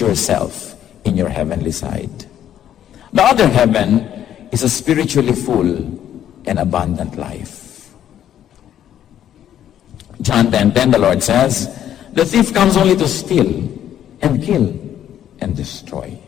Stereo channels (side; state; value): right; quieter; 10.7 dB